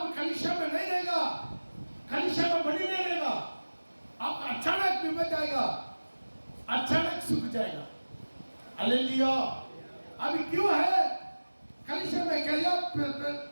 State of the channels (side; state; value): both; inverted; correlation -1.00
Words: कलिशा में नहीं रहेगा, कलिशा में बनी नहीं रहेगा, आपका अचानक विपद जाएगा, अचानक सूख जाएगा। हालेलुया। अभी क्यों है कलिशा में? क्या